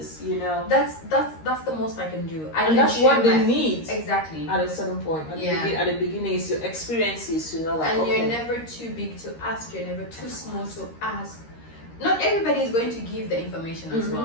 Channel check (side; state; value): right; late; 13 ms